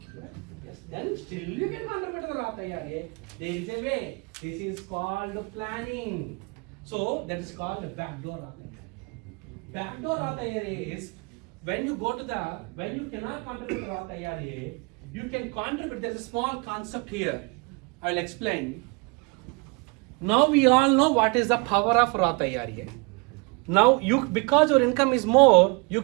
Yes, then still you can contribute to the Roth IRA. There is a way. This is called planning. So that is called the backdoor Roth IRA. Backdoor Roth IRA is when you cannot contribute to Roth IRA, you can contribute. There is a small concept here. I will explain. Now we all know what is the power of Roth IRA. Now because your income is more, you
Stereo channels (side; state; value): left; quieter; 30.3 dB